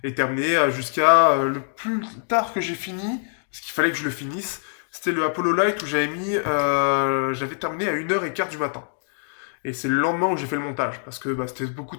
et terminer jusqu'à le plus tard que j'ai fini, parce qu'il fallait que je le finisse, c'était le Apollo Light où j'avais terminé à 1 h 15 du matin. Et c'est le lendemain où j'ai fait le montage, parce que c'était beaucoup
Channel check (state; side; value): silent; right; digital silence